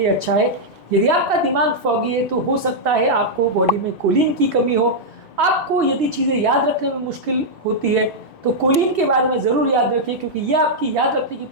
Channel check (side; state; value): right; late; 3.6 ms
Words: अच्छा है। यदि आपका दिमाग फॉगी है तो हो सकता है आपको बॉडी में कोलिन की कमी हो। आपको यदि चीज़ें याद रखने में मुश्किल होती है तो कोलिन के बारे में ज़रूर याद रखिए, क्योंकि यह आपकी याद रखने की